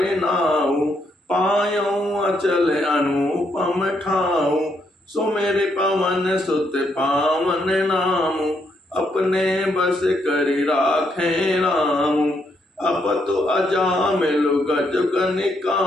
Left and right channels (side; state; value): both; normal; correlation 0.76